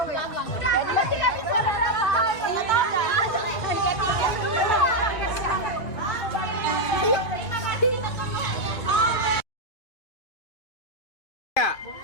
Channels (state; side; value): late; right; 2.4 ms